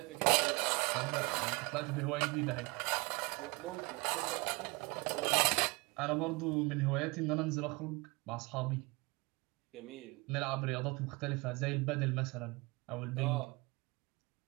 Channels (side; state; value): left; quieter; 26.3 dB